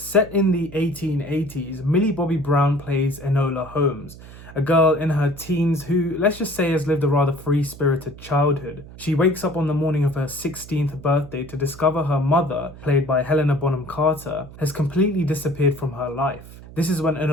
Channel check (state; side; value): noise; right; hum, 17 dB below the sound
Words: in the 1880s, Millie Bobby Brown plays Enola Holmes, a girl in her teens who, let's just say, has lived a rather free-spirited childhood. She wakes up on the morning of her 16th birthday to discover her mother, played by Helena Bonham Carter, has completely disappeared from her life. This is when